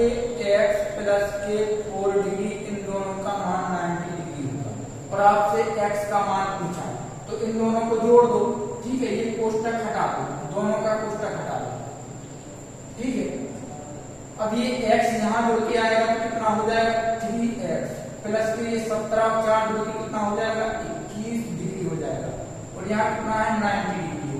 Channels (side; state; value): both; identical; correlation 1.00